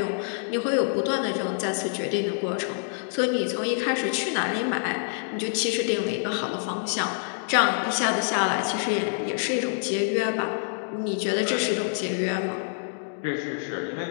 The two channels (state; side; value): silent; right; digital silence